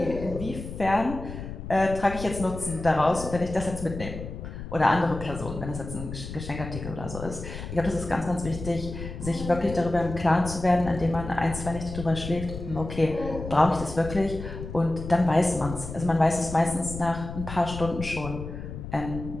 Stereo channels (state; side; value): noise; left; rumble, 9 dB below the sound